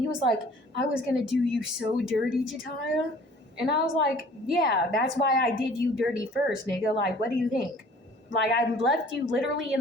he was like, I was gonna do you so dirty, Jataya. And I was like, yeah, that's why I did you dirty first, nigga. Like, what do you think? Like, I left you literally in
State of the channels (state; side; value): normal; both; correlation 0.51